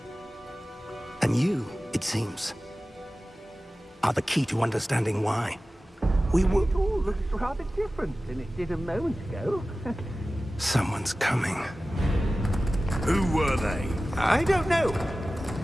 And you, it seems, are the key to understanding why. It all looks rather different than it did a moment ago. Someone's coming. Who were they? I don't know.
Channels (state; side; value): normal; both; correlation 0.96